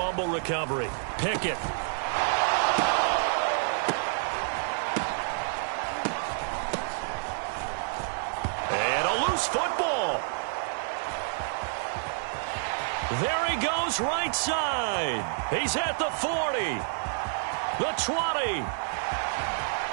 recovery, Pickett. And a loose football. There he goes right side. He's at the 40, the 20,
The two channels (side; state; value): left; silent; digital silence